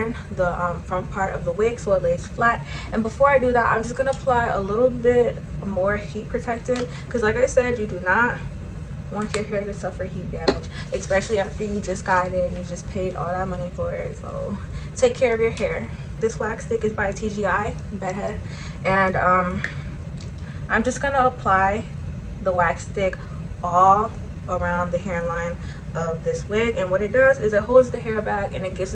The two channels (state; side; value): identical; both; correlation 1.00